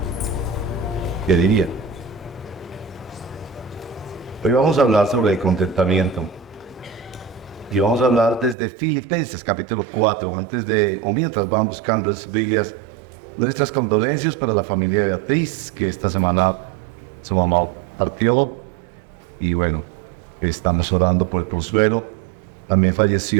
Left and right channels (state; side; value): drops out; left; at 8.6 s